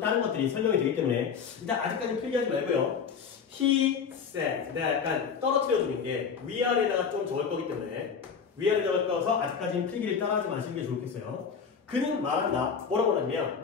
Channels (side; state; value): right; quieter; 6.4 dB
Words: 것들이 설명이 되기 때문에 일단 아직까지 필기하지 말고요. He said. 내가 약간 떨어뜨려주는 게 위아래다가 좀 적을 거기 때문에 위아래다가 적어서 아직까지는 필기를 따라하지 마시는 게 좋겠어요. 그는 말한다. 뭐라고 하냐면